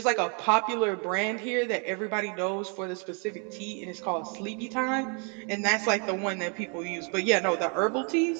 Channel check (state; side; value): quieter; left; 37.6 dB